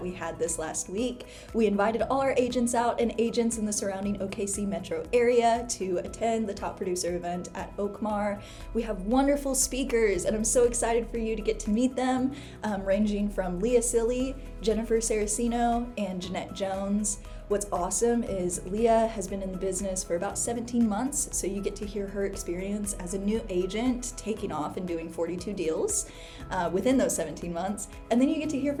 we had this last week. We invited all our agents out and agents in the surrounding OKC metro area to attend the top producer event at OKCMAR. We have wonderful speakers and I'm so excited for you to get to meet them, ranging from Leah Seely, Jennifer Sarracino, and Jeanette Jones. What's awesome is Leah has been in the business for about 17 months, so you get to hear her experience as a new agent taking off and doing 42 deals within those 17 months. And then you get to hear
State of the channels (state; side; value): identical; both; correlation 1.00